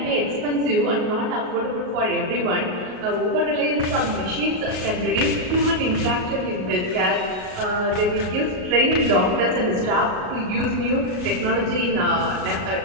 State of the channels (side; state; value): left; late; 38 ms